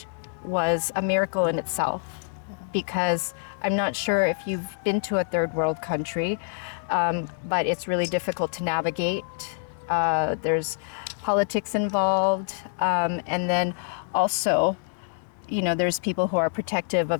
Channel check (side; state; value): right; silent; 61 dB below the other